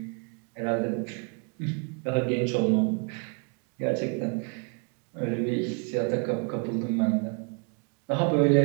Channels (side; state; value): left; quieter; 37.5 dB